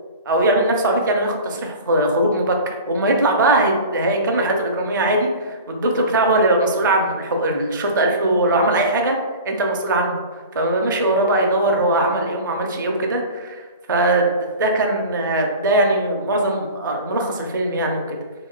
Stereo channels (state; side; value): inverted; both; correlation -0.35